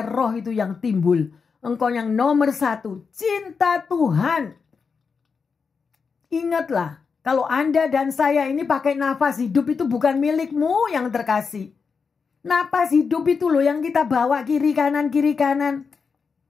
roh itu yang timbul. Engkau yang nomor 1, cinta Tuhan. Ingatlah, kalau Anda dan saya ini pakai nafas hidup itu bukan milikmu yang terkasih. Nafas hidup itu loh yang kita bawa kiri kanan, kiri kanan.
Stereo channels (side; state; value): right; quieter; 5.4 dB